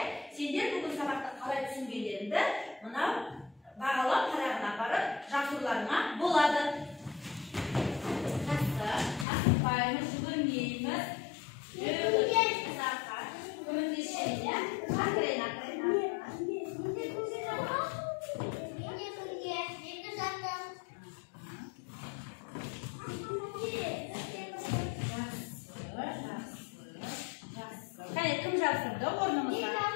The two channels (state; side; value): drops out; right; at 9.2 s